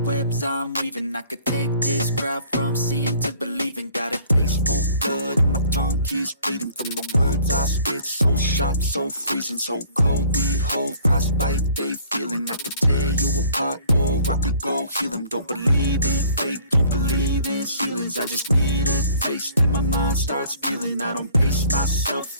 I'm weaving. I could take this crowd from seeing to believing. Got a taste for blood and my tongue keeps bleeding from the words I spit. So sharp, so freezing, so cold. Behold, frostbite they feeling. I could tear you apart or I could go heal them. Don't believe in fate, don't believe in ceilings. I just need a taste and my mind starts peeling. I don't pace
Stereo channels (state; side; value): inverted; both; correlation -0.54